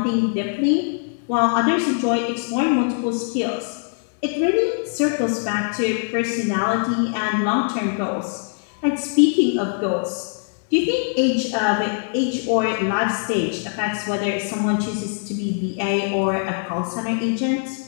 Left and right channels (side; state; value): right; silent; 64 dB below the other